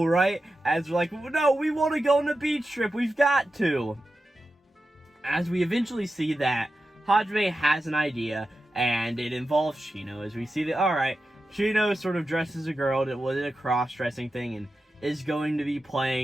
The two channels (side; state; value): both; normal; correlation 0.91